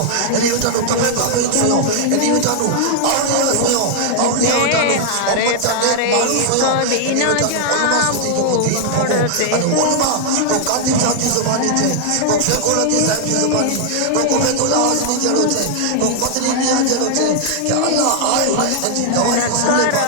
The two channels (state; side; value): different; both; correlation 0.00